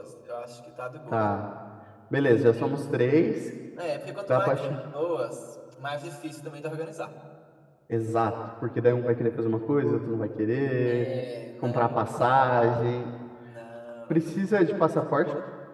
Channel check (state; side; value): identical; both; correlation 1.00